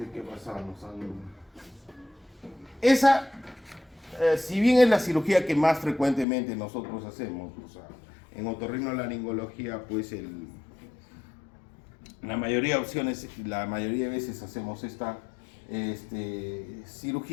qué pasamos. Esa, si bien es la cirugía que más frecuentemente nosotros hacemos, o sea, en otorrinolaringología, pues la mayoría de opciones, la mayoría de veces hacemos esta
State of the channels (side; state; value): right; drops out; at 6.2 s